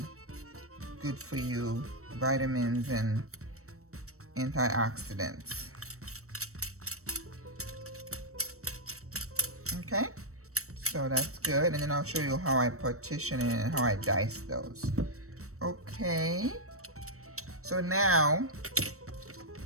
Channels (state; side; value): late; left; 0.64 ms